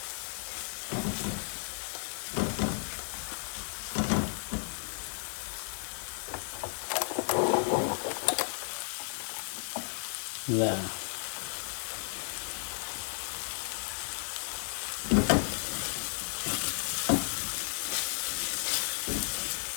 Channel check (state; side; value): silent; right; 55 dB below the other